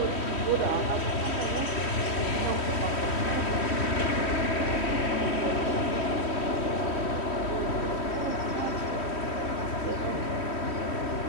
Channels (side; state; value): right; late; 3.1 ms